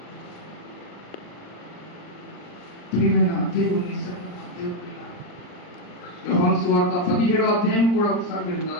ప్రియమైన దేవుని యోహాను సువార్త 17వ అధ్యాయం కూడా ఒకసారి మీరు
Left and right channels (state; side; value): late; right; 39 ms